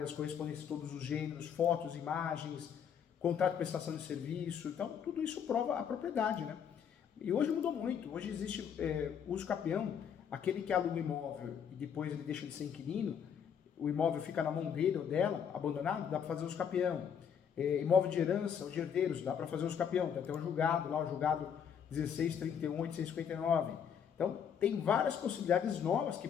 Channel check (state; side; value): quieter; right; 7.8 dB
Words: correspondências de todos os gêneros, fotos, imagens, contrato de prestação de serviço. Então, tudo isso prova a propriedade, né? E hoje mudou muito. Hoje existe uso capião, aquele que aluga o imóvel e depois ele deixa de ser inquilino, o imóvel fica na mão dele ou dela, abandonado, dá para fazer uso capião. Imóvel de herança, os herdeiros, dá para fazer uso capião. Tem até um julgado, lá o julgado 16.31.859. Então, tem várias possibilidades novas que